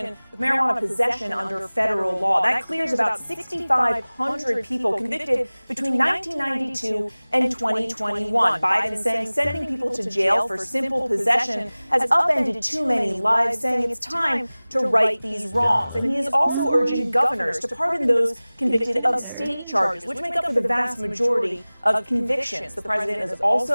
with marijuana possession under federal law. That clears about 6,500 people convicted between 1992 and 2021. Biden saying sending people to jail for simple possession has upended too many lives, saying it's time to right these wrongs. And he is also urging governors to pardon those convicted of state charges, which make up for the vast majority of convictions. The president is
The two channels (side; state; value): both; inverted; correlation -0.99